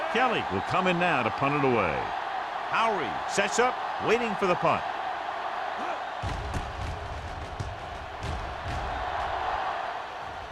Kelly will come in now to punt it away. Howery sets up, waiting for the punt.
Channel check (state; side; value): identical; both; correlation 1.00